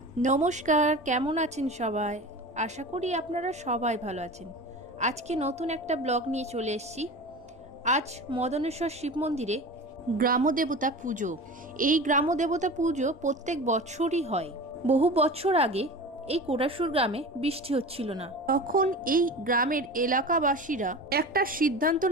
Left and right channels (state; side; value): normal; both; correlation 0.33